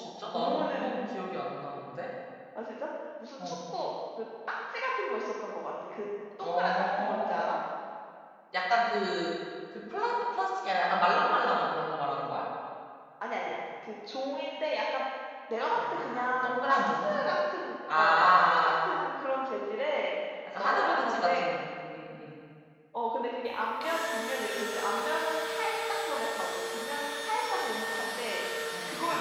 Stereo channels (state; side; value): identical; both; correlation 1.00